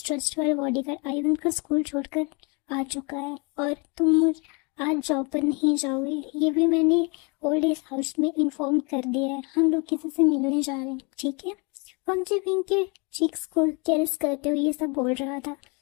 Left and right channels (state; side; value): quieter; right; 31.3 dB